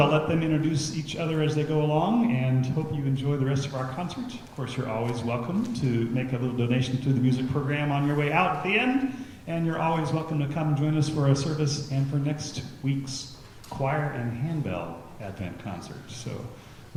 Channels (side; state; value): both; identical; correlation 1.00